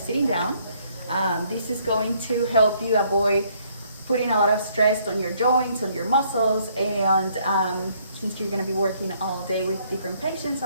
down. This is going to help you avoid putting a lot of stress on your joints, on your muscles, and since you're going to be working all day with different patients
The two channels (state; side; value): inverted; both; correlation -0.66